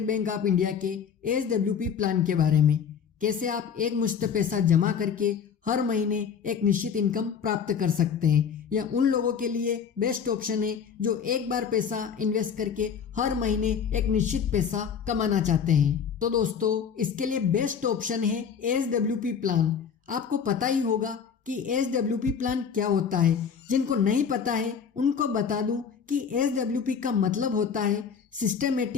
बैंक ऑफ इंडिया के एसडब्ल्यूपी प्लान के बारे में। कैसे आप एक मुश्त पैसा जमा करके हर महीने एक निश्चित इनकम प्राप्त कर सकते हैं। यह उन लोगों के लिए बेस्ट ऑप्शन है जो एक बार पैसा इन्वेस्ट करके हर महीने एक निश्चित पैसा कमाना चाहते हैं। तो दोस्तों, इसके लिए बेस्ट ऑप्शन है एसडब्ल्यूपी प्लान। आपको पता ही होगा कि एसडब्ल्यूपी प्लान क्या होता है। जिनको नहीं पता है उनको बता दूं कि एसडब्ल्यूपी का मतलब होता है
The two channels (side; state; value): right; quieter; 7.1 dB